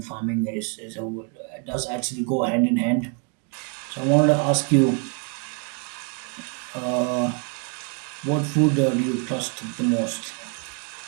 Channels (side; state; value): left; quieter; 40.0 dB